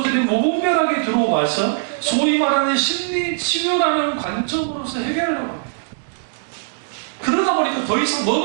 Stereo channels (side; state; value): left; silent; digital silence